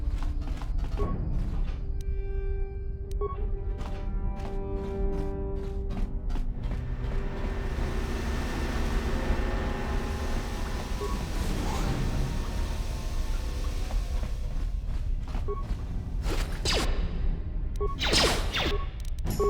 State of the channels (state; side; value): identical; both; correlation 1.00